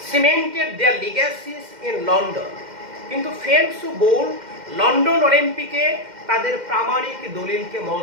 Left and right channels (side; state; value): left; late; 2.1 ms